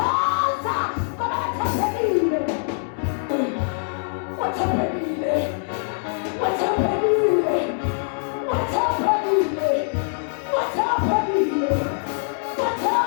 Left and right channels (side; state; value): right; silent; 63 dB below the other